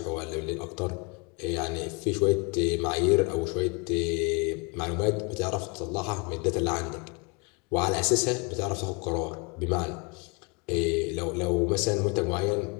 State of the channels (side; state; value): right; quieter; 30.2 dB